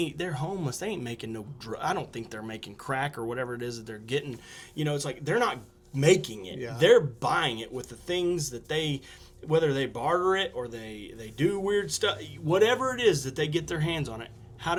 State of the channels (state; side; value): identical; both; correlation 1.00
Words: homeless. They ain't making no I don't think they're making crack or whatever it is that they're getting. You know, it's like, they're not making it. Yeah. They're buying it with the things that whether they barter it or they do weird stuff, whatever it is that they get their hands on it. How